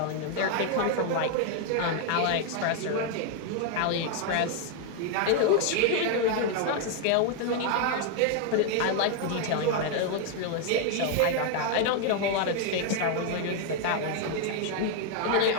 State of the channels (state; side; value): different; both; correlation 0.00